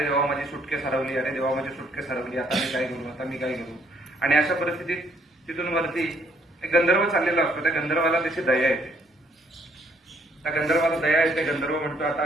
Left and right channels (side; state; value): both; normal; correlation 0.67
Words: देवा, माझी सुटकेस हरवली, अरे देवा, माझी सुटकेस हरवली, आता मी काय करू, आता मी काय करू. आणि अशा परिस्थितीत तिथून वरती एक गंधर्व चाललेला असतो. त्या गंधर्वाला त्याची दया येते. त्या गंधर्वाला दया येते. गंधर्व म्हणतो, आता